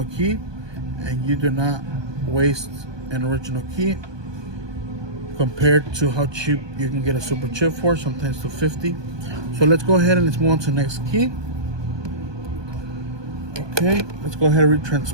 key, and you do not waste an original key. Compared to how cheap you can get a super chip for, sometimes to $50. So let's go ahead and let's move on to the next key. Okay, let's go ahead and read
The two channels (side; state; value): left; late; 1.2 ms